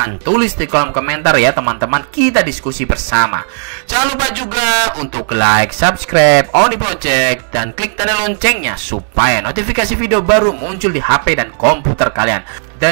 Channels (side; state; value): left; silent; digital silence